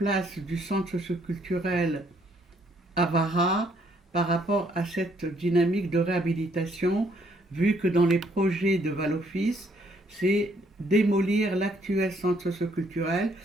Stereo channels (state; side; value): normal; both; correlation 0.68